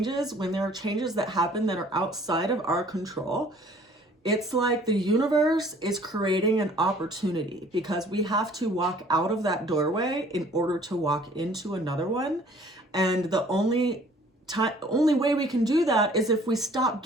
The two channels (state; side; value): normal; both; correlation 0.55